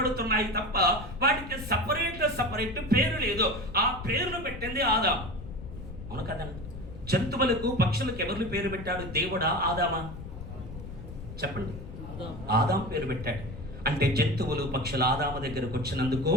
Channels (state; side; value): noise; left; rumble, 11 dB below the sound